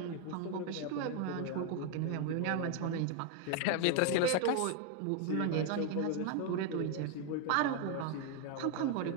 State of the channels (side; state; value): both; different; correlation 0.01